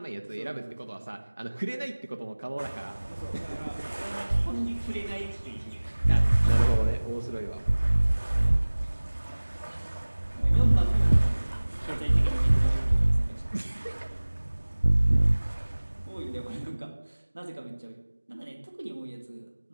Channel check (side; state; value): both; inverted; correlation -1.00